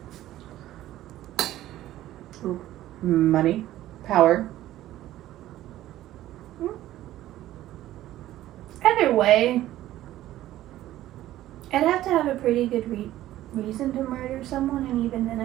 Ooh. Money. Power. Either way, I'd have to have a pretty good reason to murder someone, and even then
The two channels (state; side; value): quieter; left; 14.2 dB